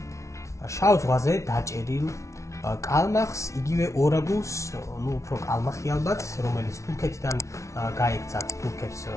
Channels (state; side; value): late; right; 0.14 ms